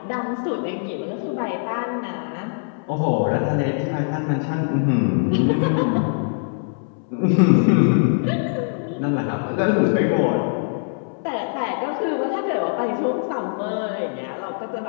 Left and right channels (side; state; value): right; silent; 64 dB below the other